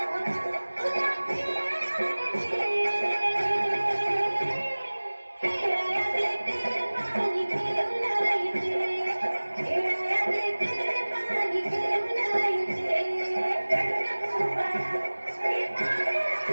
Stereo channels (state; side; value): inverted; both; correlation -1.00